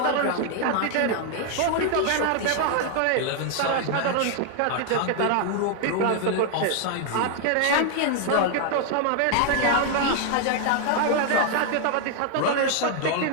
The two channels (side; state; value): both; different; correlation 0.00